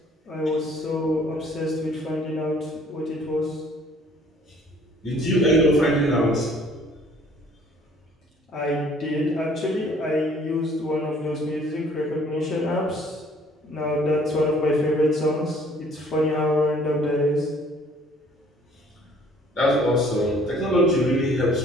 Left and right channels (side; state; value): both; normal; correlation 0.57